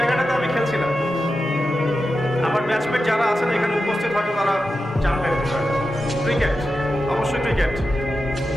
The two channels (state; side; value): normal; both; correlation 0.91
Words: আমি খেলছিলাম। আমার ব্যাচমেট যারা আছেন এখানে উপস্থিত হয়তো তারা জানবেন ক্রিকেট, অবশ্যই ক্রিকেট।